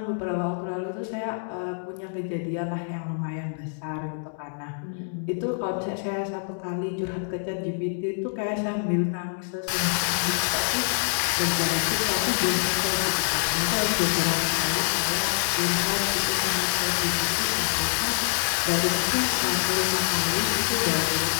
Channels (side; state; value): right; silent; digital silence